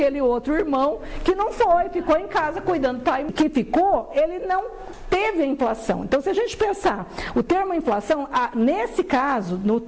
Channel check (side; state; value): both; identical; correlation 1.00